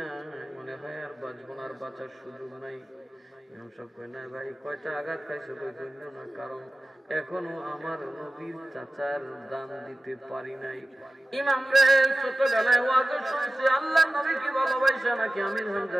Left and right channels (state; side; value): normal; both; correlation 0.96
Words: মনে হয় আর বাঁচবো না, আর বাঁচার সুযোগ নাই। ইমাম সাহেব কয় না ভাই, কয়টা আঘাত খাইছে? কই না, কারণ এখনো আমার নবীর চাচার দান দিতে পারি নাই। ইমাম রে ছোটবেলায় ওয়াজ শুনছি আল্লাহর নবী কি ভালোবাসা নাকি আমির